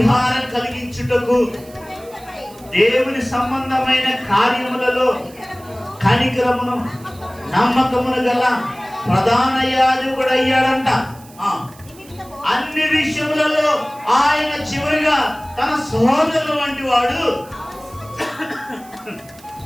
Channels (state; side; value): noise; right; hiss, 23 dB below the sound